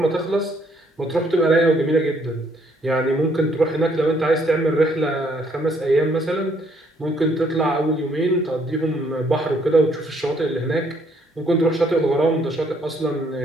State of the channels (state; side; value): normal; both; correlation 0.67